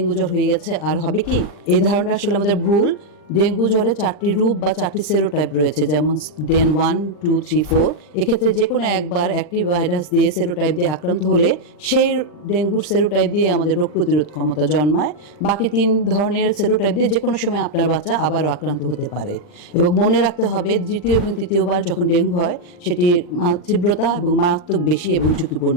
জ্বর হয়ে গেছে আর হবে কি, এই ধারণাটা আসলে আমাদের ভুল। ডেঙ্গু জ্বরে 4টি রূপ বা 4টি সেরোটাইপ রয়েছে, যেমন ডেন 1, 2, 3, 4। এক্ষেত্রে যে কোনো একবার একটি ভাইরাস দিয়ে সেরোটাইপ দিয়ে আক্রান্ত হলে সেই ডেঙ্গুর সেরোটাইপ দিয়ে আমাদের রোগ প্রতিরোধ ক্ষমতা জন্মায়। বাকি 3 ধরনের সেরোটাইপ দিয়ে যে কোনো সময় আপনার বাচ্চা আবারও আক্রান্ত হতে পারে। এবং মনে রাখতে হবে, দ্বিতীয় এবং তৃতীয়বার যখন ডেঙ্গু হয় সেটি তীব্রতা এবং মারাত্মক বেশি এবং ঝুঁকিপূর্ণ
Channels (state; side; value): late; right; 40 ms